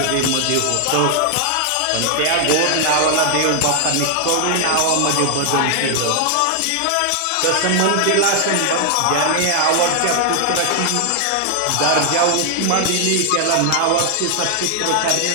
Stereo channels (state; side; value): different; both; correlation 0.00